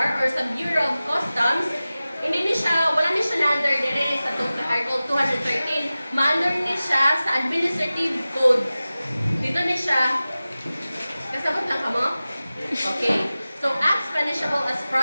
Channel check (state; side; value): inverted; both; correlation -0.96